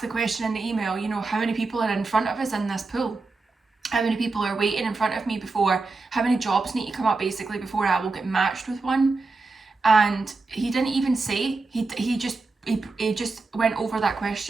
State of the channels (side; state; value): left; quieter; 3.8 dB